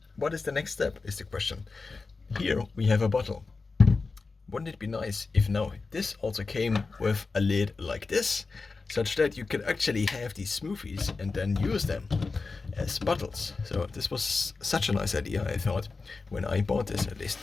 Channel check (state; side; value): quieter; right; 4.1 dB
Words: what is the next step is the question. Here we have a bottle. Wouldn't it be nice if now this also came with a lid like this, such that you could actually have these smoothies and then use them as bottles? So this was such a nice idea, I thought, when I bought this at least.